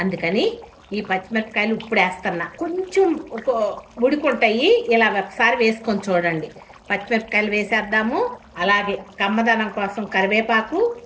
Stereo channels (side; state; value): both; identical; correlation 1.00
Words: అందుకని ఈ పచ్చిమిరపకాయలు ఇప్పుడు వేస్తున్నా. కొంచెం ఉడుకుంటాయి. ఇలా ఒకసారి వేసుకొని చూడండి. పచ్చిమిరపకాయలు వేసేద్దాము. అలాగే కమ్మదనం కోసం కరివేపాకు.